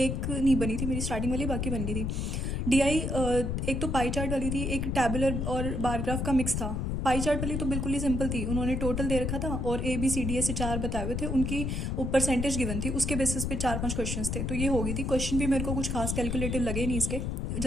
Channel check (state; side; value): noise; left; rumble, 1 dB below the sound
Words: नहीं बनी थी मेरी स्टार्टिंग वाली, बाकी बन गई थी। DI एक तो पाई चार्ट वाली थी, एक टैबुलर और बार ग्राफ का मिक्स था। पाई चार्ट वाली तो बिल्कुल ही सिंपल थी, उन्होंने टोटल दे रखा था और ABCD ऐसे 4 बताए हुए थे, उनकी परसेंटेज गिवन थी, उसके बेसिस पे 4-5 क्वेश्चंस थे, तो ये हो गई थी। क्वेश्चन भी मेरे को कुछ खास कैलकुलेटिव लगे नहीं इसके,